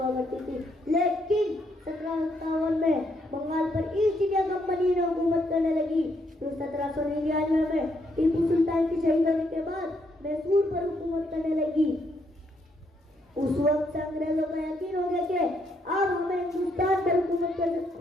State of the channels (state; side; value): normal; both; correlation 0.74